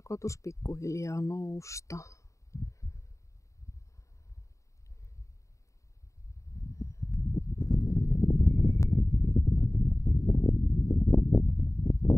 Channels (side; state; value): right; late; 0.15 ms